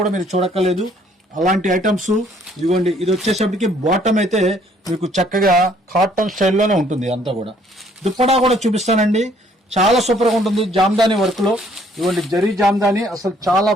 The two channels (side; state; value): both; normal; correlation 0.63